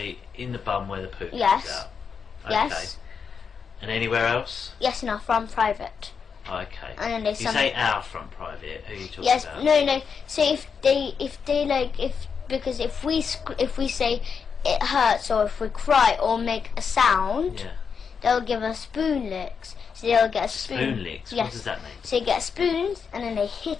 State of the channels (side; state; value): right; quieter; 6.2 dB